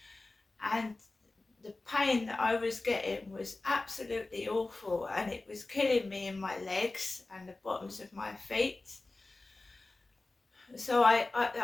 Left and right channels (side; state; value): right; quieter; 3.2 dB